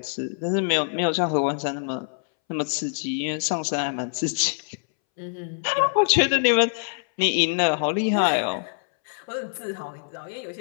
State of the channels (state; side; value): silent; right; 62 dB below the other